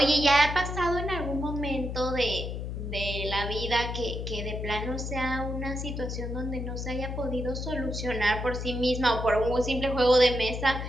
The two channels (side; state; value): left; noise; hum, 5 dB below the sound